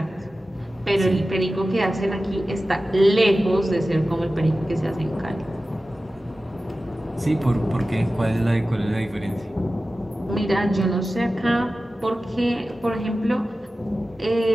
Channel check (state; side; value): normal; both; correlation 0.95